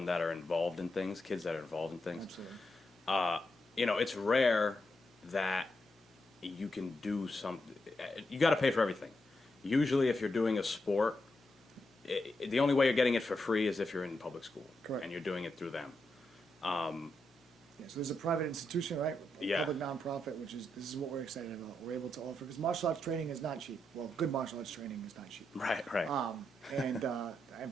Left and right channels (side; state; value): both; normal; correlation 0.84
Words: that are involved in things, kids that are involved in things. Absolutely. It's rare that you can do something. You got to pay for everything. Usually, if you're doing a sport, the only way you're getting it for free is if you're in public school. Correct. And you're doing it through them. Yeah, so there's a private institution, right? Yeah. Public nonprofit, this is what we're excited about. We're able to offer, because martial arts training is not cheap. Well, good martial arts training is not cheap. Right. And I